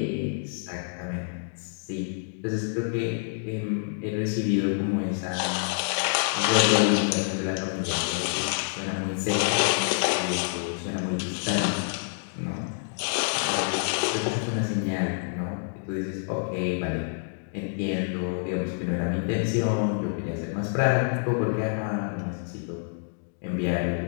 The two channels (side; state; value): right; silent; digital silence